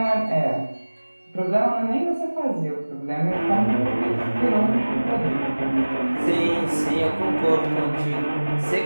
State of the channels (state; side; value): inverted; both; correlation -1.00